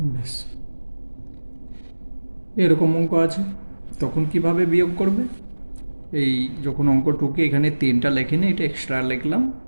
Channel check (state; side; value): inverted; both; correlation -1.00